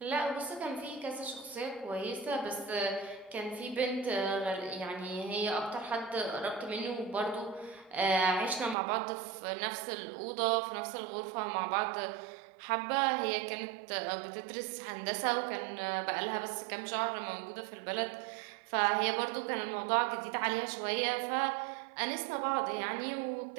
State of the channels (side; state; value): left; drops out; at 8.8 s